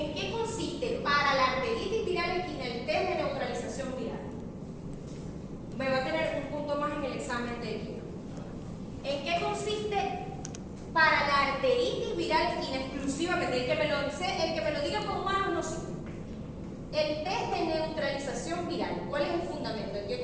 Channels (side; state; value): both; identical; correlation 1.00